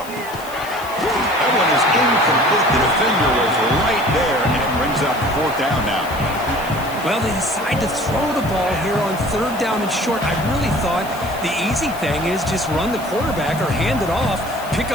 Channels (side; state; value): left; noise; hiss, 17 dB below the sound